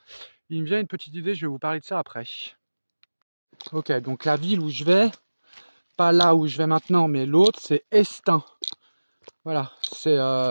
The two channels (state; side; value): inverted; both; correlation -1.00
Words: Il me vient une petite idée, je vais vous parler de ça après. Ok, donc la ville où je vais, pas là où je vais maintenant, mais l'autre, c'est Estaing. Voilà, c'est,